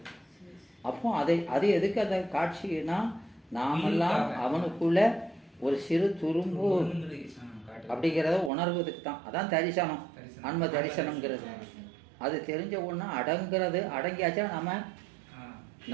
அப்போ அது எதுக்கு அந்த காட்சினா, நாமெல்லாம் அவனுக்குள்ள ஒரு சிறு துரும்பு அப்படிங்கிறத உணர்வதுக்கு தான். அதான் தரிசனம், ஆன்ம தரிசனம்ங்கிறது. அது தெரிஞ்ச ஒண்ணு அடங்குறது, அடங்கியாச்சா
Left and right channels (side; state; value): left; drops out; at 8.5 s